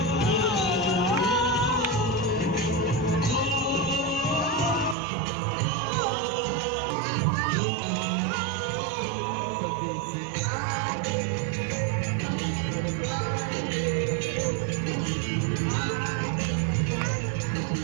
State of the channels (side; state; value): left; drops out; at 5.0 s